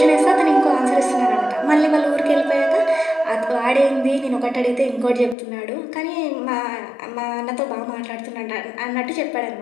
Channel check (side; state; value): right; drops out; at 5.4 s